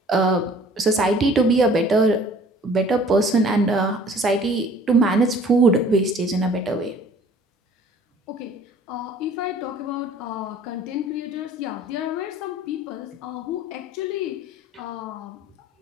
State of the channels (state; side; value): normal; both; correlation 0.51